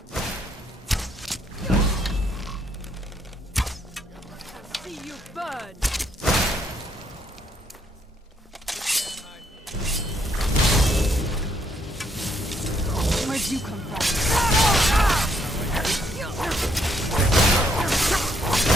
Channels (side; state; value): both; normal; correlation 0.72